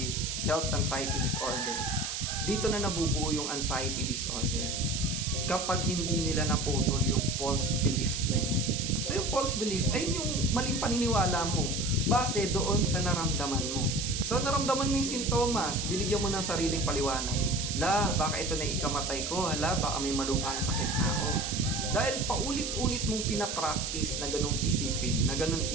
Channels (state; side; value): noise; right; hiss, 3 dB below the sound